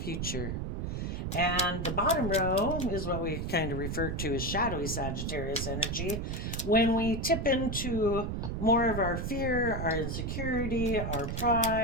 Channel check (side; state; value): right; noise; rumble, 3 dB below the sound